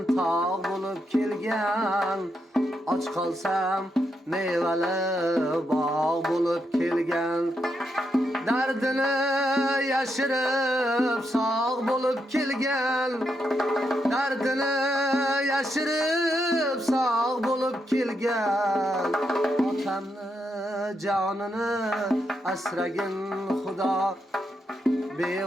tog' bo'lib kelgan. Och qolsam mevali bog' bo'lib kelgan. Dardini yashirib sog' bo'lib kelgan. Dardini yashirib sog' bo'lib kelgan. Otamni jonini asragin Xudo.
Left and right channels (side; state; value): both; normal; correlation 0.82